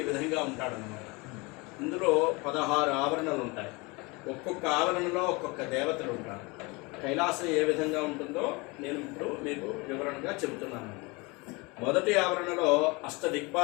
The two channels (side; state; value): right; quieter; 26.4 dB